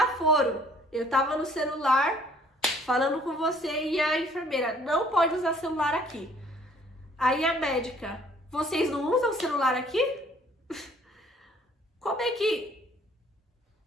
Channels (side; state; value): both; normal; correlation 0.59